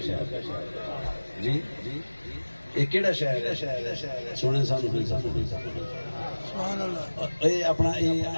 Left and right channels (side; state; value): both; inverted; correlation -1.00